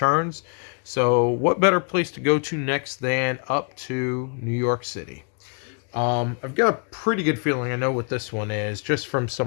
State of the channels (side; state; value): right; quieter; 39.5 dB